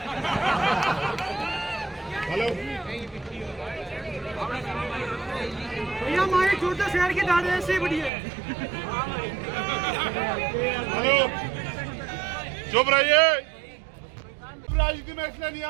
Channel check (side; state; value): left; drops out; at 8.1 s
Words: हेलो भैया, हमारे छोटे शहर की दाढ़ी ऐसे बढ़िया है। हेलो, चुप रहिए। राजनीति में इसलिए नहीं